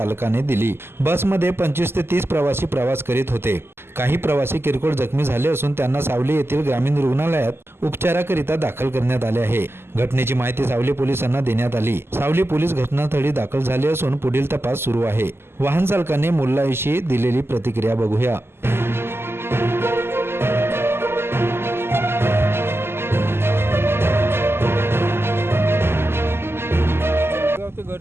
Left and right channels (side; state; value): left; late; 0.12 ms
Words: दिली। बसमध्ये 25 ते 30 प्रवासी प्रवास करीत होते। काही प्रवासी किरकोळ जखमी झाले असून त्यांना सावली येथील ग्रामीण रुग्णालयात उपचाराकरिता दाखल करण्यात आले आहे। घटनेची माहिती सावली पोलिसांना देण्यात आली। सावली पोलीस घटनास्थळी दाखल झाले असून पुढील तपास सुरू आहे। वाहन चालकाने मुल्लाविषयी दिलेली प्रतिक्रिया बघूया। ते